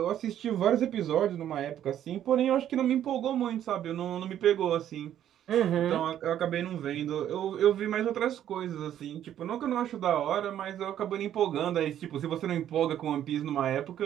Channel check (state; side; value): quieter; left; 10.9 dB